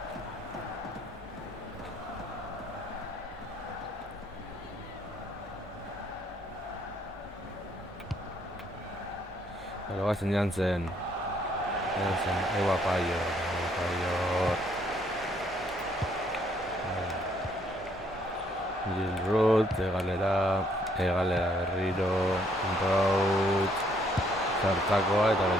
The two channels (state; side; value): normal; both; correlation 0.68